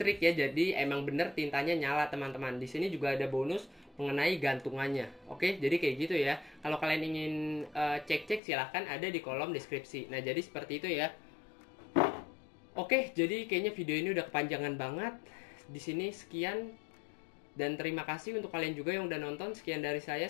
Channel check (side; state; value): right; drops out; at 8.4 s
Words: ya, jadi emang bener tintanya nyala teman-teman. Di sini juga ada bonus mengenai gantungannya. Oke, jadi kayak gitu ya. Kalau kalian ingin cek-cek silahkan ada di kolom deskripsi. Nah, jadi seperti itu ya. Oke, jadi kayaknya video ini udah kepanjangan banget. Di sini sekian, dan terima kasih untuk kalian juga yang udah nonton. Sekian dari saya